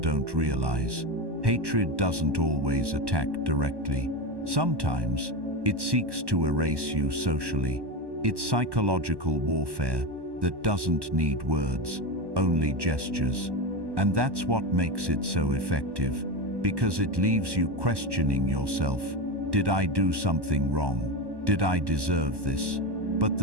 realize. Hatred doesn't always attack directly. Sometimes, it seeks to erase you socially. It's psychological warfare that doesn't need words, only gestures. And that's what makes it so effective. because it leaves you questioning yourself. Did I do something wrong? Did I deserve this? But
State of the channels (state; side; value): late; left; 1.1 ms